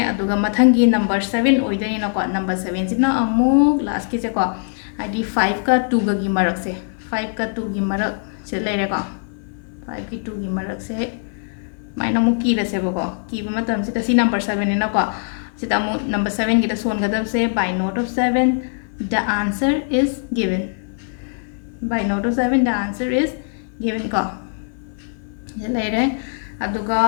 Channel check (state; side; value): silent; right; 57 dB below the other